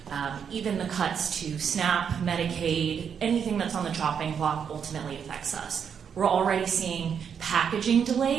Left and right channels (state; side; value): quieter; left; 7.4 dB